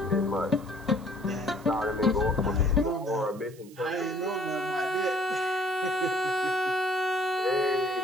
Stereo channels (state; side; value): noise; right; hiss, 24 dB below the sound